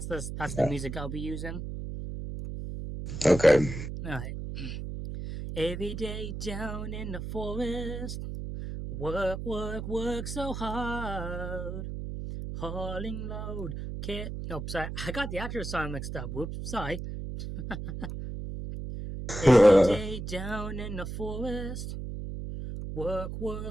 the music I'll be using. Okay. Alright. Every day down in the forest, work so hard, hauling load. Nope, sorry, I got the actual song mixed up. Whoops, sorry. Every day down in the forest, work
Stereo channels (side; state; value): right; noise; hum, 6 dB below the sound